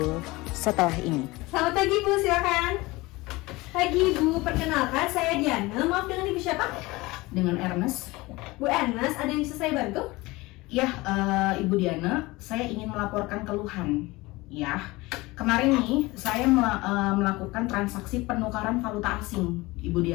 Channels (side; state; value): right; quieter; 21.6 dB